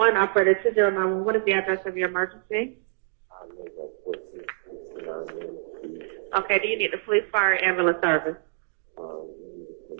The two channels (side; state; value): left; silent; digital silence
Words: operator 2091. What is the address of your emergency? Okay, do you need the police, fire, ambulance service?